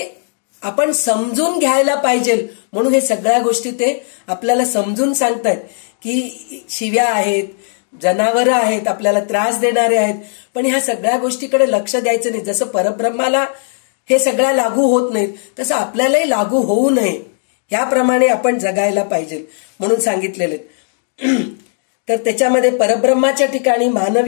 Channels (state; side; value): silent; right; digital silence